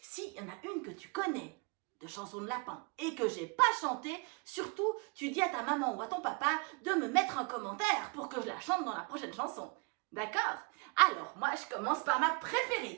S'il y en a une que tu connais, de chansons de lapin, et que j'ai pas chanté, surtout, tu dis à ta maman ou à ton papa de me mettre un commentaire pour que je la chante dans la prochaine chanson. D'accord? Alors, moi, je commence par ma préférée,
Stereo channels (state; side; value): quieter; left; 31.3 dB